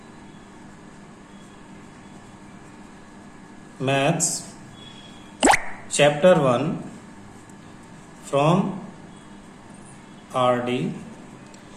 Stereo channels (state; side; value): identical; both; correlation 1.00